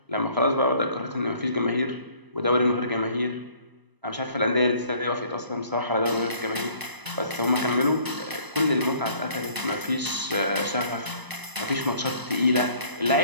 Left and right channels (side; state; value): left; late; 1.0 ms